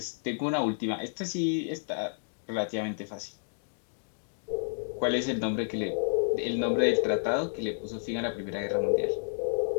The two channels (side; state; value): right; silent; digital silence